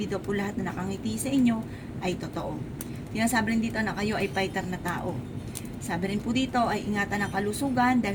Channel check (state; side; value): identical; both; correlation 1.00